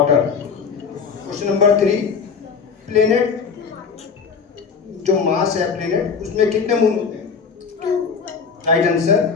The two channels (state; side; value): quieter; right; 5.8 dB